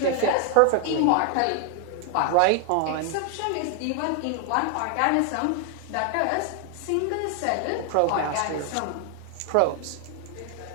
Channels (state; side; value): different; both; correlation 0.00